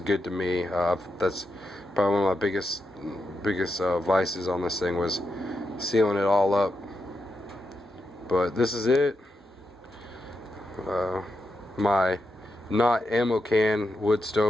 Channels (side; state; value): both; normal; correlation 0.86